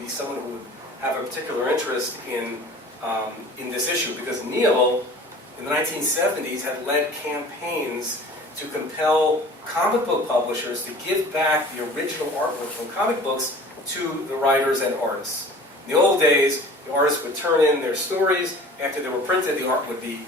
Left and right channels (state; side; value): normal; both; correlation 0.44